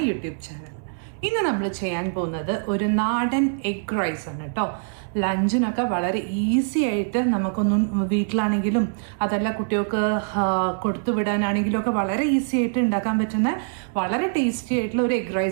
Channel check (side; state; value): left; silent; digital silence